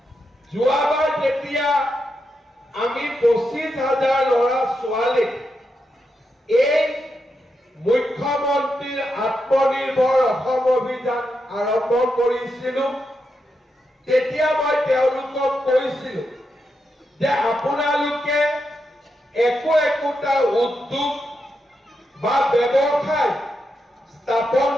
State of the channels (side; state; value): both; normal; correlation 0.85